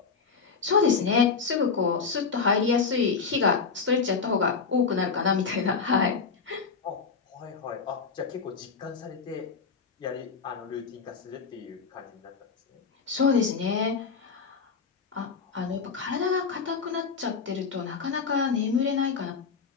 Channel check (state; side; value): quieter; right; 5.4 dB